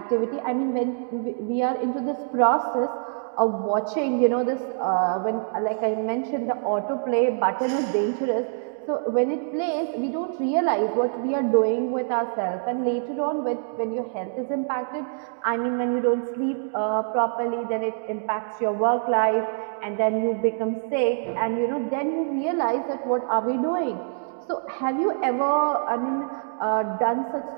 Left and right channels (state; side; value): silent; left; digital silence